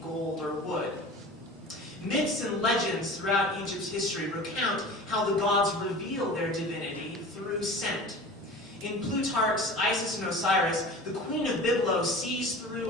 gold or wood. Myths and legends throughout Egypt's history recount how the gods reveal their divinity through scent. In Plutarch's Isis and Osiris, the queen of Byblos sees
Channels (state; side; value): normal; both; correlation 0.38